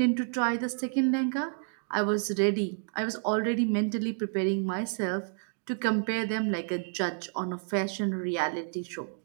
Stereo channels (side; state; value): left; silent; 58 dB below the other